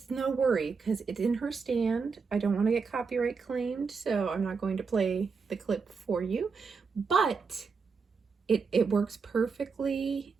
no worry because it's in her stand. I don't want to get copyright claimed, so I'm not going to play the clip for you, but it works perfectly.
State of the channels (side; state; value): left; quieter; 5.1 dB